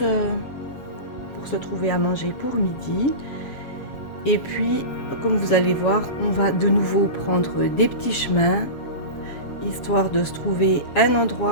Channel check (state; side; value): late; right; 7.3 ms